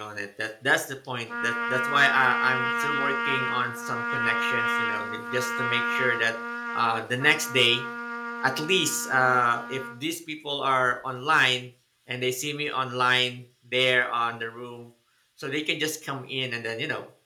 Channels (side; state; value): both; identical; correlation 1.00